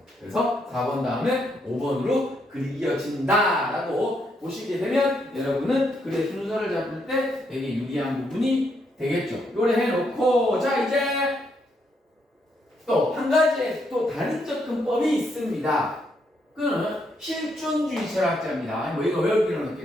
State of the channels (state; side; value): normal; both; correlation 0.76